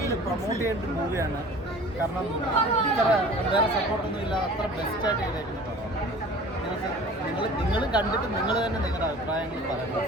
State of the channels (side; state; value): both; normal; correlation 0.44